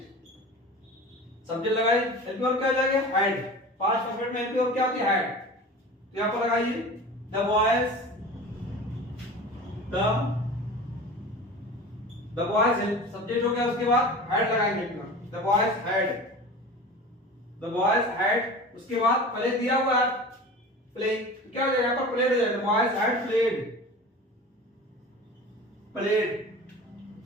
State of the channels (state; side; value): normal; both; correlation 0.36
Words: Subject लगाइए, हेल्पिंग वर्ब क्या हो जाएगा, हैड। पांच परफेक्ट में हेल्पिंग वर्ब क्या होती है, हैड। तो यहां पर लगाइए the boys, the boys subject हो गया, उसके बाद हैड लगाएंगे helping verb, the boys had, उसके बाद पहले दिया हुआ है प्लेइंग, क्या हो जाएगा, यहां पर प्लेड हो जाएगा, the boys had played